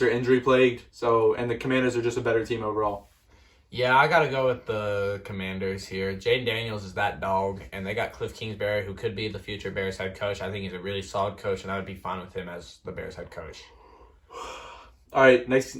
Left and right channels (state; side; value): identical; both; correlation 1.00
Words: are injury-plagued, and the Commanders are just a better team overall. Yeah, I got to go with the Commanders here. Jaden Daniels is that dog, and they got Cliff Kingsbury, who could be the future Bears head coach. I think he's a really solid coach, and I would be fine with him as the Bears head coach. All right,